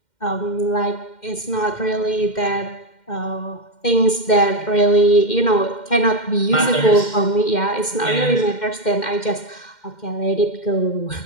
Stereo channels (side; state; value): right; late; 2.1 ms